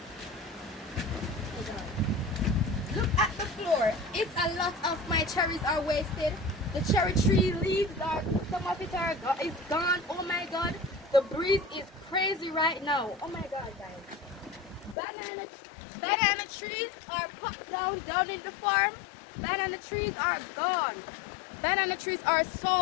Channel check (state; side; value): drops out; right; at 15.0 s